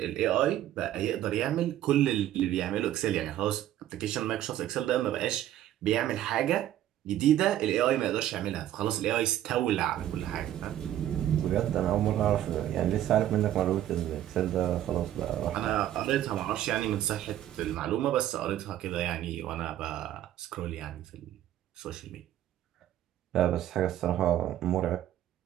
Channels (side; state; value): left; quieter; 12.4 dB